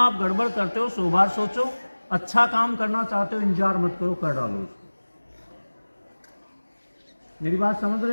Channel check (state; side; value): inverted; both; correlation -1.00